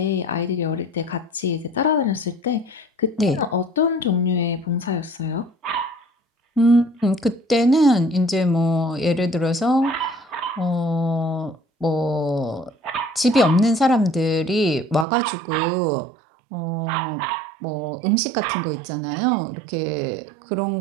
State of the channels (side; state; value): left; drops out; at 15.1 s